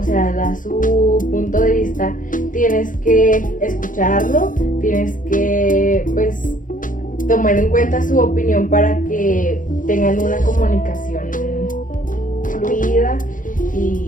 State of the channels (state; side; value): late; right; 0.38 ms